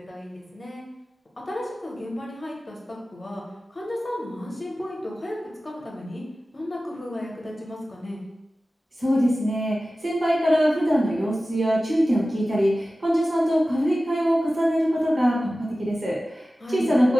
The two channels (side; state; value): both; normal; correlation 0.95